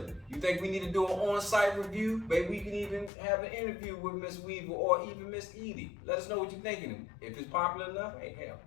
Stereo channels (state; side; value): drops out; right; at 3.1 s